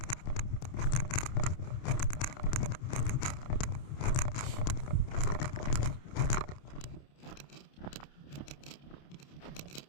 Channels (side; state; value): right; late; 29 ms